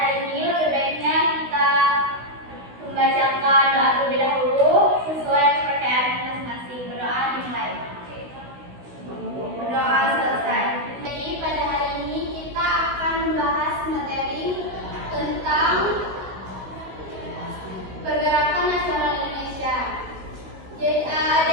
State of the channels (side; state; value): left; late; 16 ms